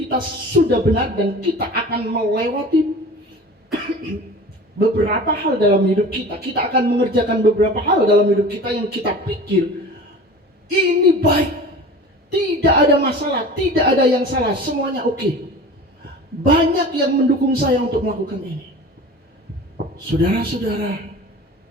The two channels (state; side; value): normal; both; correlation 0.38